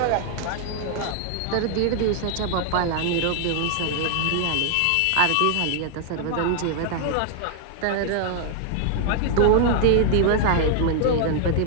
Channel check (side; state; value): both; different; correlation 0.00